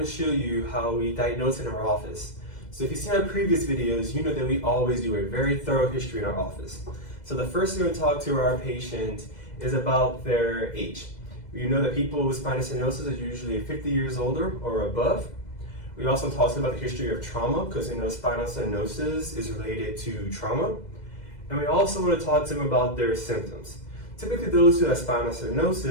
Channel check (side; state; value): right; late; 2.0 ms